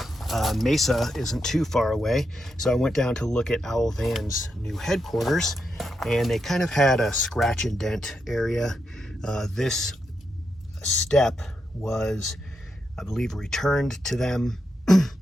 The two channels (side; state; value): both; normal; correlation 0.84